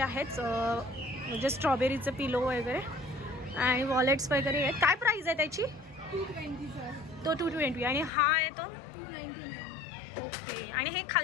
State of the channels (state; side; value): drops out; right; at 8.1 s